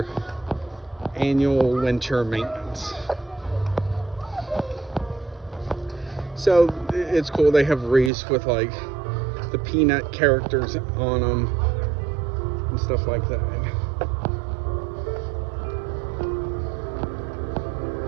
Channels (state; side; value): drops out; left; at 8.1 s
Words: annual winter maintenance. So it's cool. They have wreaths with like the Peanut characters on them and stuff like that.